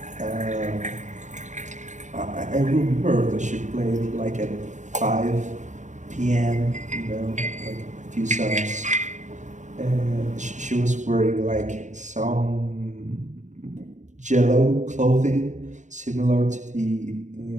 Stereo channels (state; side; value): late; left; 0.35 ms